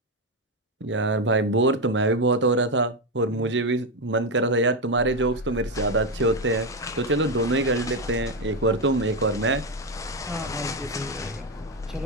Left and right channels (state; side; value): normal; both; correlation 0.09